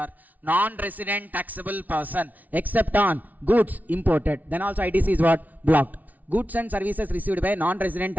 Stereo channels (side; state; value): left; late; 0.076 ms